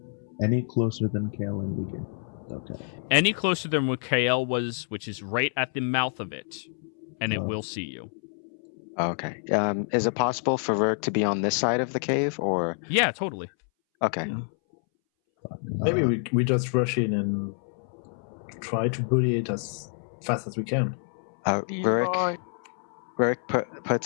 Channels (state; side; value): silent; right; 60 dB below the other